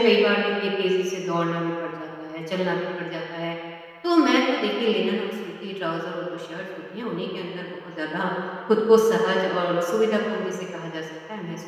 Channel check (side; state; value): both; identical; correlation 1.00